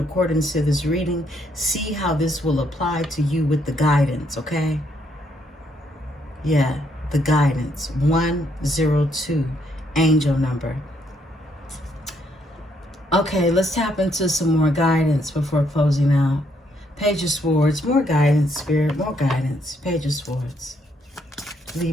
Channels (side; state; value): both; normal; correlation 0.73